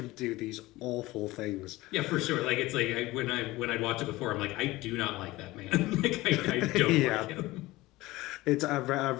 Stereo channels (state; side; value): quieter; right; 19.1 dB